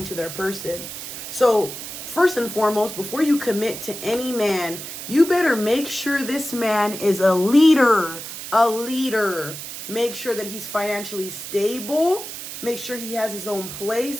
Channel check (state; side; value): noise; right; hiss, 9 dB below the sound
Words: to their person? So, first and foremost, before you commit to any man, you better make sure this man is a leader. A leader. Make sure that he's financially stable. Make sure he has his own